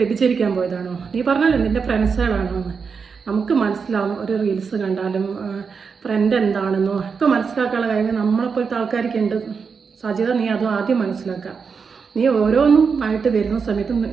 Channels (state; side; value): quieter; left; 5.6 dB